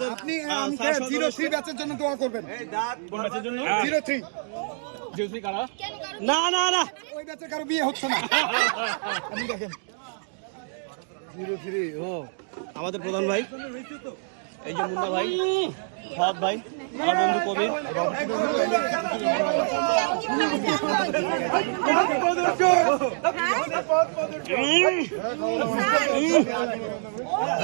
আপনি আমাকে 03 ব্যাচের জন্য দোয়া করবেন। কোন ব্যাচের জন্য 03 জিওসি কারা না না না ওই ব্যাচের কারো বিয়ে হচ্ছে না। আপনি দেখেন 03 ও আমাদের প্রধান ভাই এই যে মুন্না ভাই ফাদ ভাই আমার বন্ধু কবির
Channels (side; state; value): left; silent; digital silence